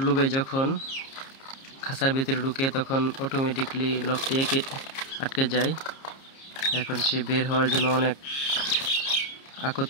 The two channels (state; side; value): late; right; 30 ms